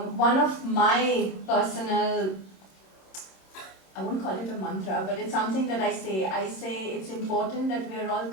one of my personal, I won't call it a mantra, but it's something that I say it's important that we are all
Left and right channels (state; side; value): late; right; 26 ms